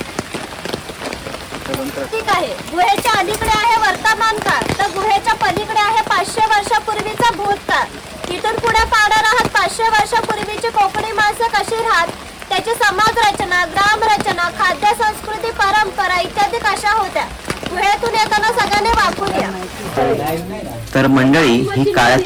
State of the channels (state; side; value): identical; both; correlation 1.00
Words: ठीक आहे, गुहेच्या अलीकडे आहे वर्तमान काळ, तर गुहेच्या पलीकडे आहे 500 वर्षापूर्वीचा भूतकाळ। इथून पुढे पाहणार आहात 500 वर्षापूर्वीची कोकणी माणसं कशी राहत, त्याची समाज रचना, ग्राम रचना, खाद्य संस्कृती, परंपरा इत्यादी कशा होत्या। गुहेतून येताना सगळ्यांनी वापरूया। तर मंडळी, ही